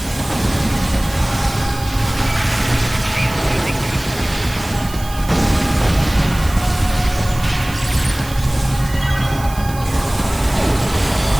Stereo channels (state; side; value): noise; right; hiss, 15 dB below the sound